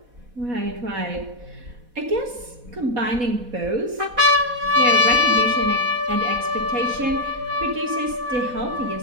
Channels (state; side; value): late; left; 4.1 ms